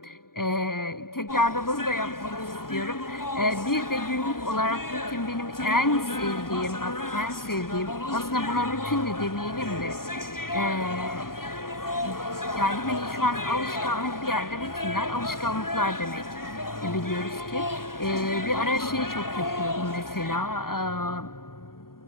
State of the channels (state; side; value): late; right; 0.92 ms